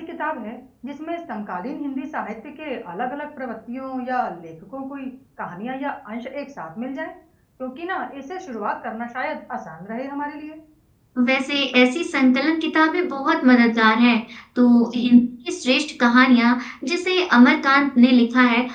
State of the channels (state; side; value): identical; both; correlation 1.00